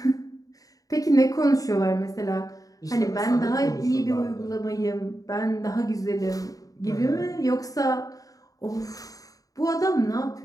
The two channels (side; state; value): right; late; 0.17 ms